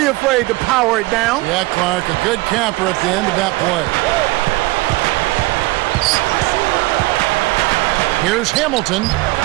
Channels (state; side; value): quieter; left; 21.4 dB